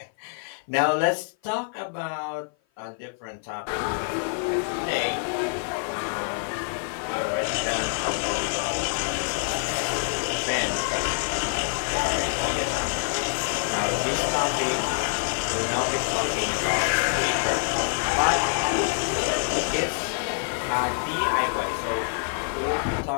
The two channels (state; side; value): silent; right; 55 dB below the other